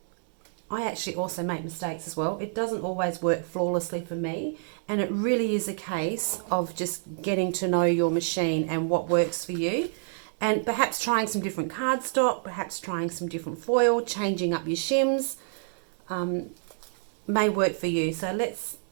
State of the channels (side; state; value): left; silent; digital silence